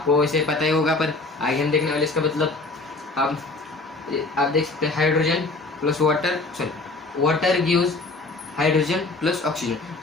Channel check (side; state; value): right; quieter; 3.3 dB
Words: वैसे पता ही होगा पर आगे हम देखने वाले। इसका मतलब आप देख सकते हैं hydrogen plus water, sorry water gives hydrogen plus oxygen,